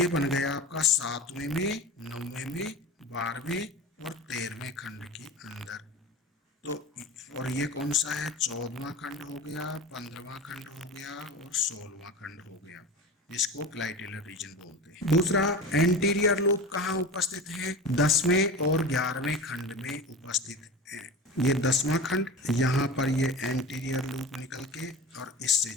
बन गया आपका 7वें में, 9वें में, 12वें और 13वें खंड के अंदर तो और ये कौन सा है, 14वां खंड हो गया, 15वां खंड हो गया और 16वां खंड हो गया, जिसको क्लाइटेलर रीजन बोलते हैं। दूसरा, एंटीरियर लूप कहाँ उपस्थित है, 10वें और 11वें खंड में उपस्थित है। ये 10वां खंड, यहाँ पर ये एंटीरियर लूप निकल के और इससे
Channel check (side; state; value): both; normal; correlation 0.31